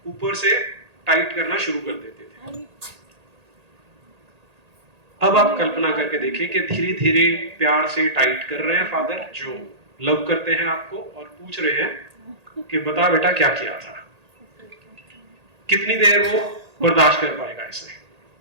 ऊपर से टाइट करना शुरू कर देते थे। अब आप कल्पना करके देखिए कि धीरे धीरे प्यार से टाइट कर रहे हैं फादर, जो लव करते हैं आपको, और पूछ रहे हैं कि बता बेटा क्या किया था। कितनी देर वो बर्दाश्त कर पाएगा इसे?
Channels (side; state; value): left; late; 1.8 ms